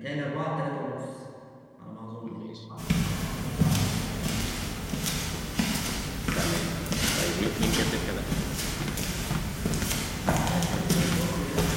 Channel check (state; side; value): identical; both; correlation 1.00